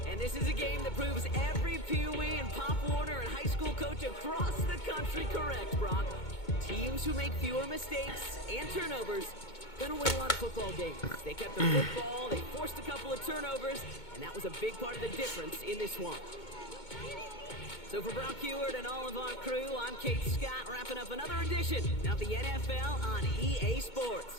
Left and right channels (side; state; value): right; late; 2.2 ms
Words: And this is a game that proves every Pee Wee and Pop Warner and high school coach across the country correct, Brock. Teams who make fewer mistakes and turnovers gonna win a lot of football games. They kept the football, they forced a couple of turnovers, and that was a big part of the difference in this one. So for Brock Heward and all of our crew, I'm Kate Scott, wrapping up another edition of the NFL on EA Sports.